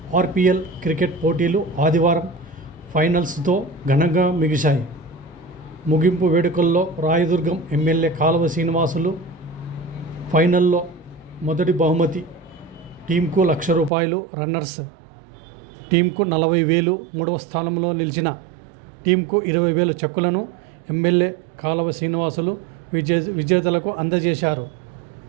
RPL cricket పోటీలు ఆదివారం ఫైనల్స్తో ఘనంగా ముగిశాయి. ముగింపు వేడుకల్లో రాయదుర్గం ఎమ్మెల్యే కాలువ శ్రీనివాసులు ఫైనల్లో మొదటి బహుమతి టీంకు ₹1,00,000, రన్నర్స్ టీంకు 40,000, మూడవ స్థానంలో నిలిచిన టీంకు 20,000 చెక్కులను ఎమ్మెల్యే కాలువ శ్రీనివాసులు విజేతలకు అందజేశారు.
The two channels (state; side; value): drops out; left; at 13.9 s